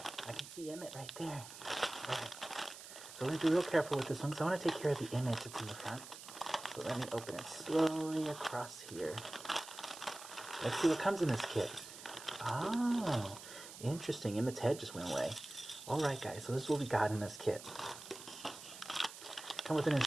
I can see Emmet right there. Right. So we're going to be real careful with this one because I want to take care of the image that's in the front. So let me open it slowly across here. Let's see what comes in this kit. Oh, interesting. Emmet's head just went away. Alright guys, so this is what we got in this kit. Come with an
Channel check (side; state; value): right; noise; hiss, 14 dB below the sound